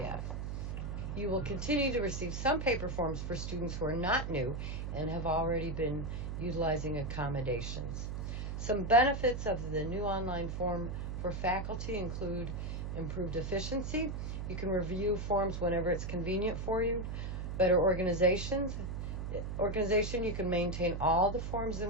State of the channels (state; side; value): noise; right; hum, 4 dB below the sound